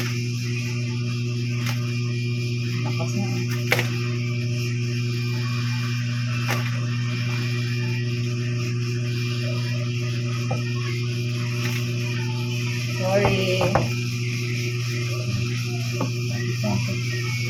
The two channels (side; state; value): both; identical; correlation 1.00